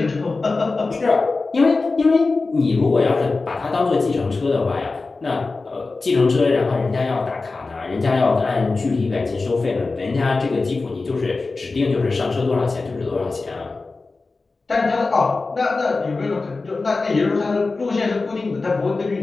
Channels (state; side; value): quieter; right; 3.8 dB